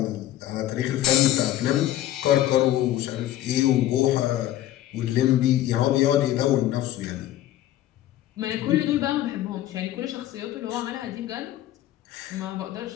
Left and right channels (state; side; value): quieter; right; 13.5 dB